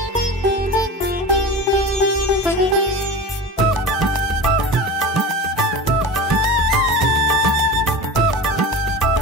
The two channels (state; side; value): normal; both; correlation 0.31